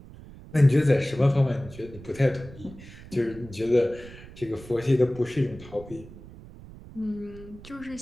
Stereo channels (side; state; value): right; noise; rumble, 17 dB below the sound